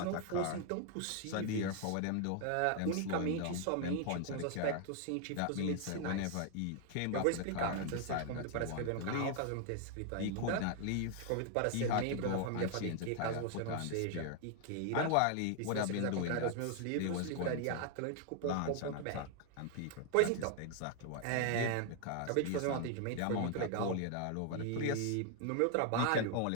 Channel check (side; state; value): both; different; correlation 0.00